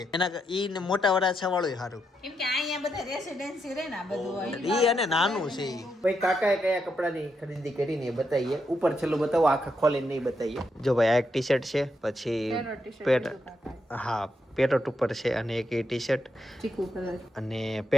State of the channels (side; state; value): both; normal; correlation 0.82